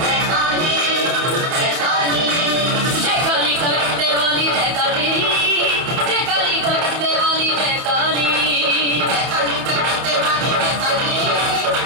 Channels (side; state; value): left; late; 30 ms